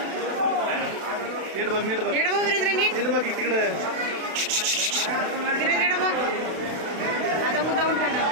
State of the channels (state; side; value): late; left; 32 ms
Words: नीट बघ नीट बघ वीरेंद्र नीट नीट बघ तिकडे. वीरेंद्र बघ आता मुद्दाहून खाणार